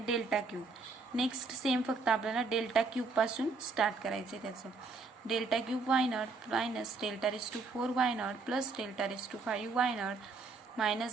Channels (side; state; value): left; quieter; 4.0 dB